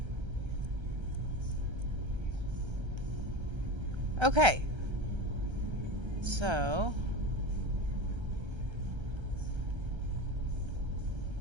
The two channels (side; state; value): left; late; 1.3 ms